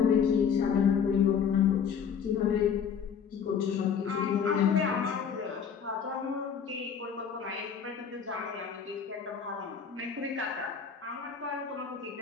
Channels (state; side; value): quieter; right; 7.1 dB